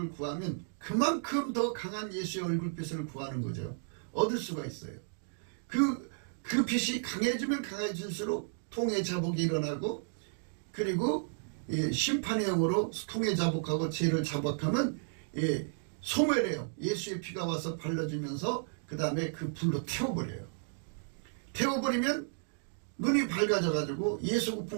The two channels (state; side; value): silent; left; digital silence